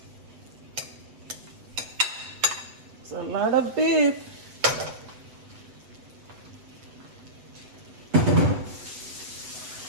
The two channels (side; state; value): left; late; 8.0 ms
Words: It's a lot of beef.